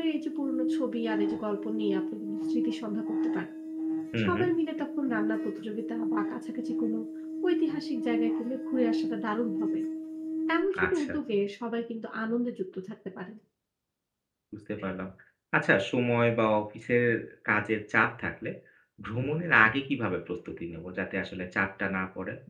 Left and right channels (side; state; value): both; identical; correlation 1.00